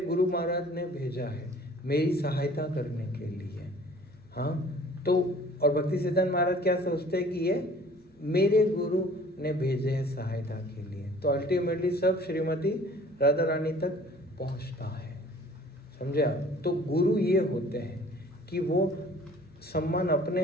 महाराज ने भेजा है मेरी सहायता करने के लिए। हाँ, तो और भक्ति सिद्धांत महाराज क्या सोचते हैं कि ये मेरे गुरु ने भेजे हैं सहायता के लिए। तो अल्टीमेटली सब श्रीमती राधा रानी तक पहुंचता है, समझे आप। तो गुरु ये होते हैं कि वो सम्मान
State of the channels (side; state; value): both; normal; correlation 0.51